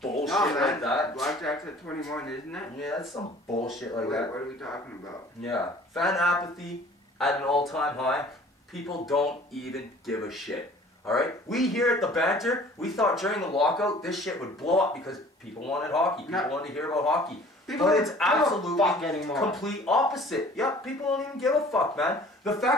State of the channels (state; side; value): normal; both; correlation 0.50